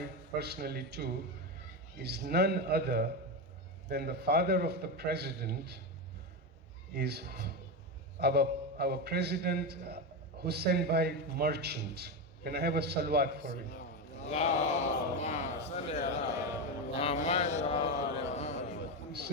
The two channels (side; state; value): both; normal; correlation 0.13